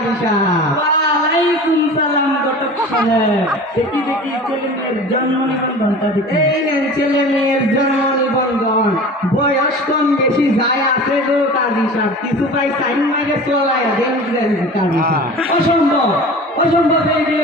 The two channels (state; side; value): normal; both; correlation 0.38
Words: সাহেব। ওয়ালাইকুম সালাম ঘটক সাহেব। দেখি দেখি ছেলে মেয়ের জন্ম নিবন্ধনটা দেখি। এই নেন ছেলে মেয়ের জন্ম নিবন্ধন। বয়স কম বেশি যায় আছে গো কাজী সাহেব, কিছু পাই সাইন মাইরে চলায় দেন দেন কাজী সাহেব। অসম্ভব অসম্ভব, এই বিয়ে